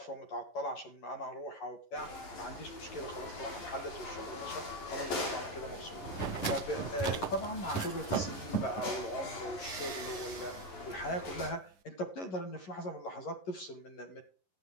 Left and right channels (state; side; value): late; right; 10 ms